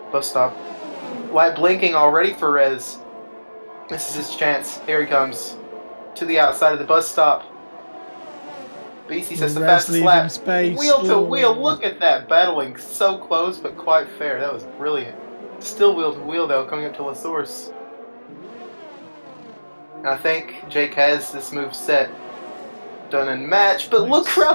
bus stop. Light blinking already for Rez. This is his chance. Here he comes. To the outside of the bus stop. Beastie says the fastest lap. Wheel to wheel. Look at that. Battling so close, but quite fair. That was brilliant. Still wheel to wheel, though, coming up to La Source. And I think Jake has this move set. Done and matched. But look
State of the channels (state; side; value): inverted; both; correlation -1.00